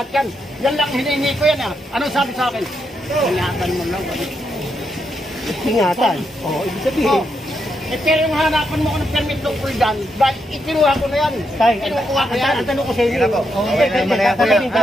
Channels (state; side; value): normal; both; correlation 0.81